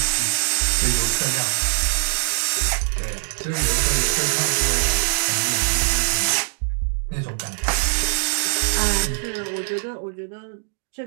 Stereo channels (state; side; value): silent; left; digital silence